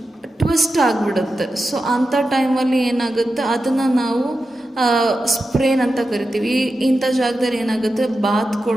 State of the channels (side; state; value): both; normal; correlation 0.91